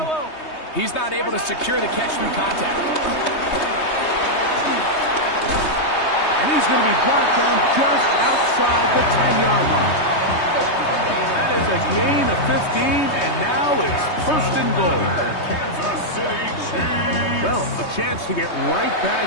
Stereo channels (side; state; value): right; late; 3.2 ms